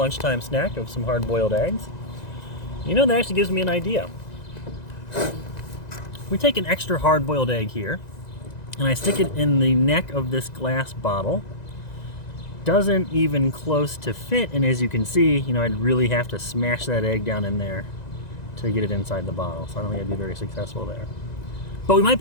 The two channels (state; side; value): late; right; 1.9 ms